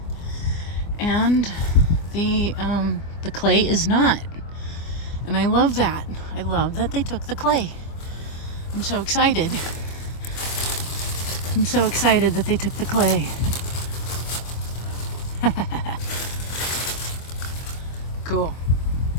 and the clay is not. And I love that. I love that they took the clay. I'm so excited. I'm so excited that they took the clay. Cool.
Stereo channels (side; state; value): right; late; 24 ms